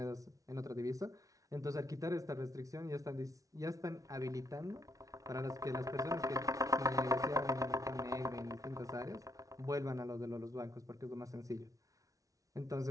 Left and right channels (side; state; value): left; late; 0.17 ms